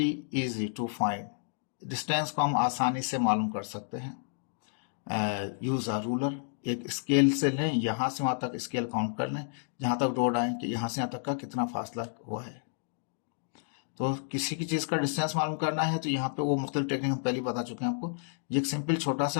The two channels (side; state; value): right; silent; digital silence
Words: easy to find. Distance को हम आसानी से मालूम कर सकते हैं। यूज़ अ रूलर, एक स्केल से लें, यहाँ से वहाँ तक स्केल काउंट कर लें, जहाँ तक डॉट आए कि यहाँ से यहाँ तक का कितना फासला हुआ है। तो किसी की चीज़ का डिस्टेंस मालूम करना है तो यहाँ पे वो मुख्तलिफ टेक्निक हम पहले ही बता चुके हैं आपको। ये एक सिंपल छोटा